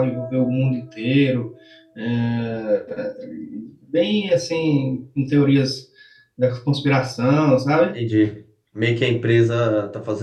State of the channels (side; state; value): both; identical; correlation 1.00